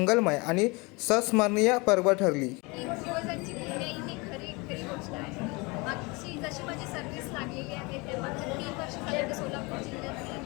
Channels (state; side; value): quieter; right; 26.9 dB